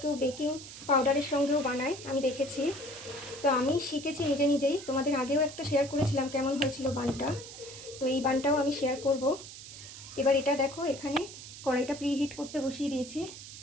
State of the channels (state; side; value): noise; right; hiss, 13 dB below the sound